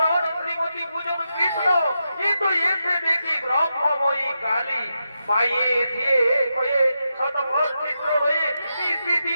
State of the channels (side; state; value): both; inverted; correlation -0.87